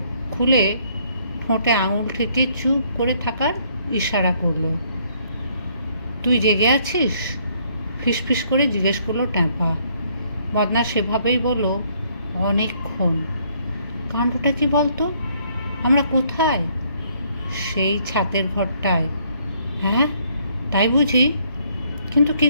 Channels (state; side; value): inverted; both; correlation -0.67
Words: খুলে ঠোঁটে আঙুল ঠেকে চুপ করে থাকার ইশারা করলো। তুই জেগে আছিস? ফিসফিস করে জিজ্ঞেস করলো ট্যাপা। মদনা সেভাবেই বলল, অনেকক্ষণ। কাণ্ডটা কি বলতো? আমরা কোথায়? সেই ছাতের ঘরটায়। হ্যাঁ, তাই বুঝি? কিন্তু কি